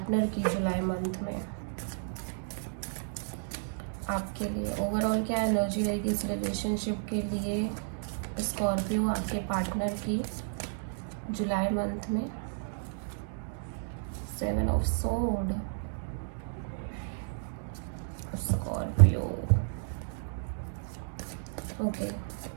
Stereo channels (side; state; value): left; silent; digital silence